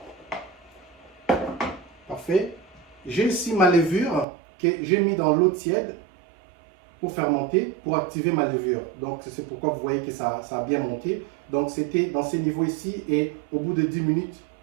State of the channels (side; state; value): left; drops out; at 4.2 s